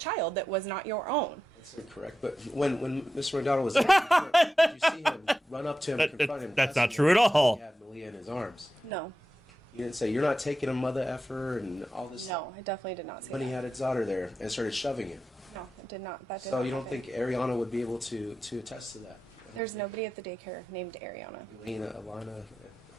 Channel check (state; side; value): normal; both; correlation 0.90